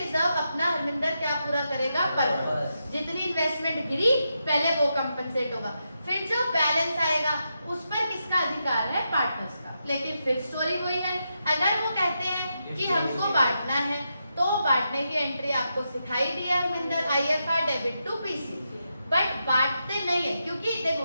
अपना हरमिंदर क्या पूरा करेगा पर्पस। जितनी इन्वेस्टमेंट गिरी पहले वो कंपनसेट होगा, फिर जो बैलेंस आएगा उस पर किसका अधिकार है, पार्टनर्स का। लेकिन फिर स्टोरी वही है, अगर वो कहते हैं कि हमको बांटना है तो बांटने की एंट्री आपको सिखाई दी है Harminder, IFR debit to PC। But बांटते नहीं है, क्योंकि देखो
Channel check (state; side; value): inverted; both; correlation -0.85